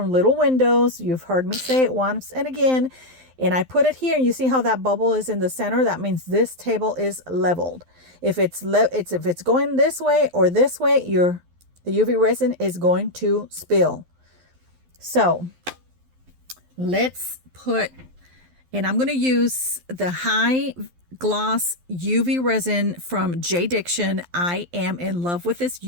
Little Windows. You've heard me say it once and again. And I put it here, and you see how that bubble is in the center? That means this table is leveled. If it's going this way or this way, the UV resin is going to spill. So let's put, and I'm going to use the high gloss UV resin from J Diction. I am in love with this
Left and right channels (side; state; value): left; late; 12 ms